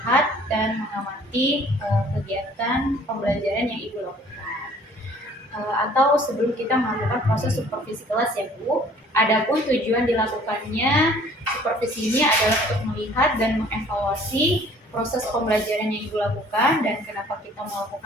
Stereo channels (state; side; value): normal; both; correlation 0.54